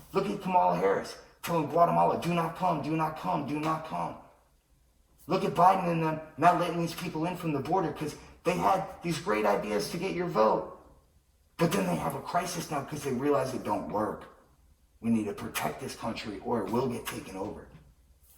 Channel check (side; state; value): both; identical; correlation 1.00